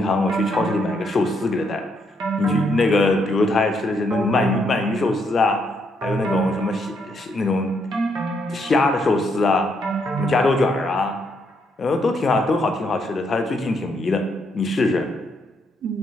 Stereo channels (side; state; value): both; normal; correlation 0.75